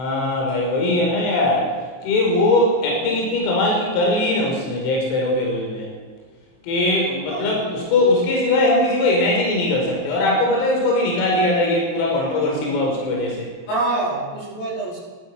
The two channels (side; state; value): right; late; 23 ms